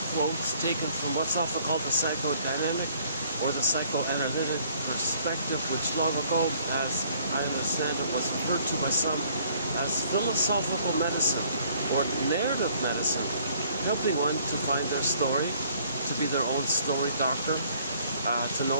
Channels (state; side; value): inverted; both; correlation -0.61